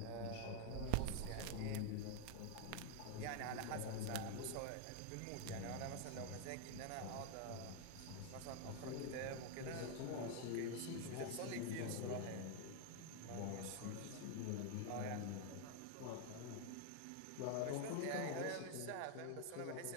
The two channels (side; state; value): both; different; correlation 0.00